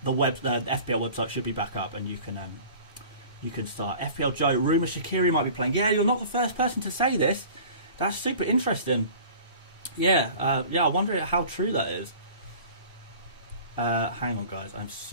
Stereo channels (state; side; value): inverted; both; correlation -0.44